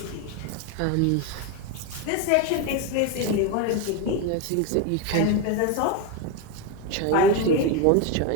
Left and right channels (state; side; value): different; both; correlation 0.02